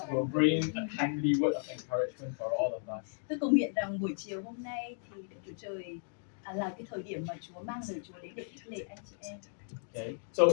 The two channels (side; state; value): right; silent; digital silence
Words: will bring a timely word of encouragement for all of us. Tôi cầu nguyện rằng buổi chiều hôm nay thì Đức Chúa Trời là cái thời điểm mà Chúa mang lời Chúa đến để khích lệ anh chị em. Okay, so